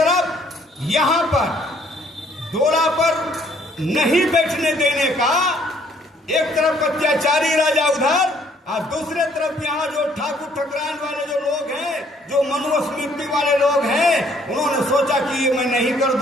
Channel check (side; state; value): both; normal; correlation 0.64